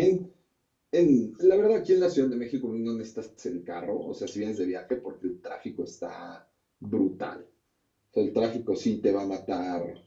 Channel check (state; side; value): identical; both; correlation 1.00